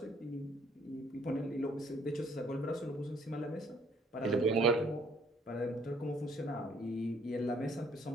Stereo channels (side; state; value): both; normal; correlation 0.62